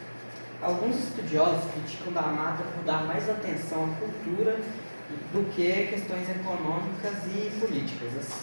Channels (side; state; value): both; inverted; correlation -1.00